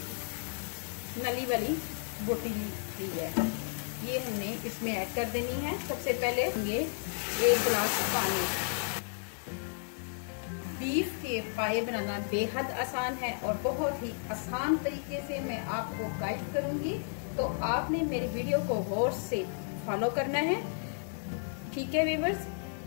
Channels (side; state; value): right; silent; digital silence